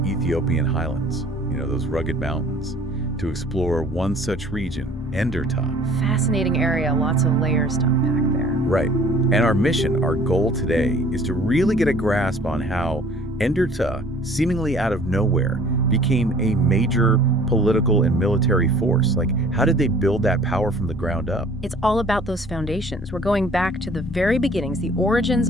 Ethiopian highlands, those rugged mountains, to explore one such region, Enderta. Fascinating area, lots of layers to unpack there. Right. And our mission, our goal today, is to really get a grasp on how Enderta, seemingly out of nowhere, became a major political and military force. Like, how did they build that power from the ground up? It's all about those foundations. We're going back to the very beginnings, the origins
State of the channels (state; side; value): normal; both; correlation 0.52